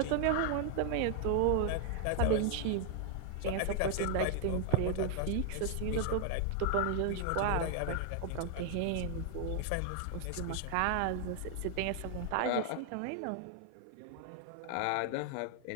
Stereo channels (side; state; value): both; different; correlation 0.00